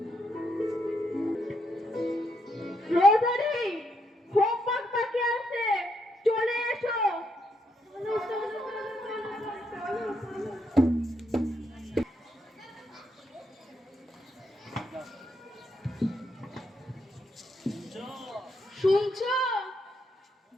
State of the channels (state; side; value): normal; both; correlation 0.78